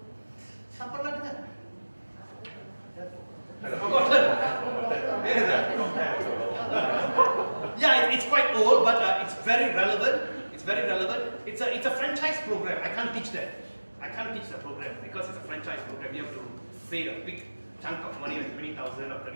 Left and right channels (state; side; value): inverted; both; correlation -1.00